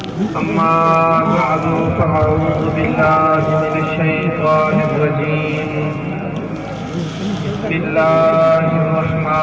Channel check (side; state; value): both; identical; correlation 1.00